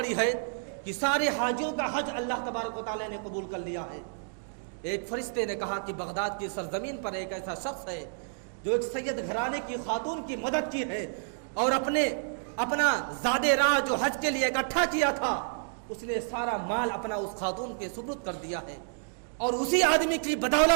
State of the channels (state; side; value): silent; left; digital silence